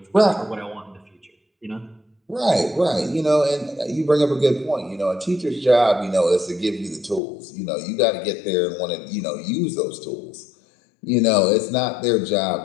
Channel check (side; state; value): right; drops out; at 7.2 s